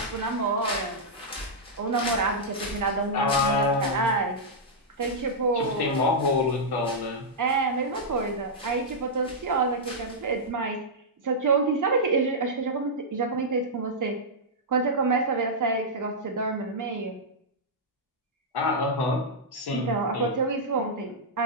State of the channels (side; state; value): both; normal; correlation -0.09